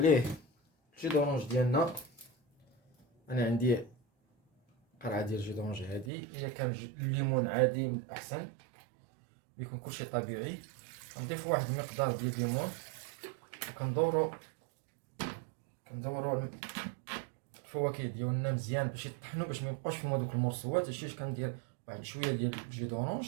الجي دورونج ديالنا. انا عندي قرعه ديال الجي دورونج هادي، الا كان الليمون عادي من الاحسن، بيكون كلشي طبيعي. غنضيفو واحد المقدار ديال الليمون، وكندورو الفواكه ديالنا مزيان باش يطحنوا، باش ما يبقاوش فيهم هذوك المرصوات. هادشي كندير واحد شويه ديال الجي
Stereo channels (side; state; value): left; drops out; at 6.1 s